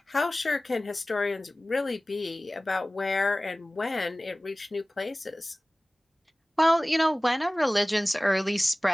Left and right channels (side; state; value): both; normal; correlation 0.98